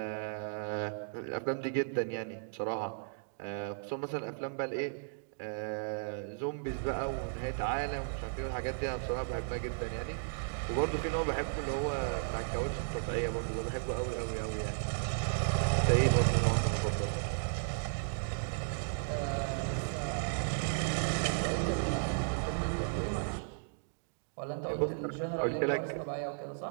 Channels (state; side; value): silent; left; digital silence